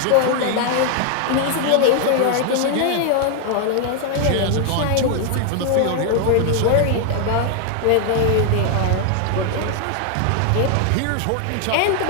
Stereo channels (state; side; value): different; both; correlation 0.00